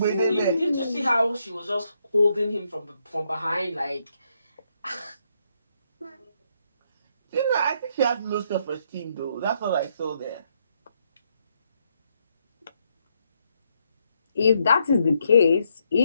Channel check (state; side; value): inverted; both; correlation -0.75